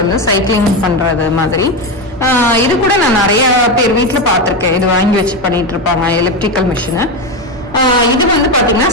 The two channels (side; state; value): both; normal; correlation 0.14